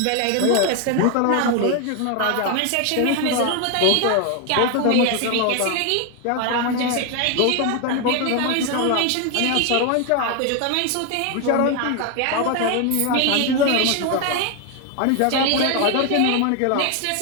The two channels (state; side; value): different; both; correlation 0.01